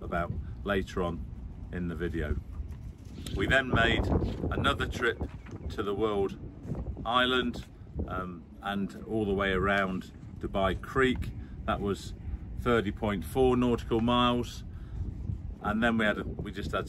later on in the video. We then made another trip to the World Island and all the way around Dubai Creek. That was 30.4 nautical miles, and then we just had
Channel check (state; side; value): identical; both; correlation 1.00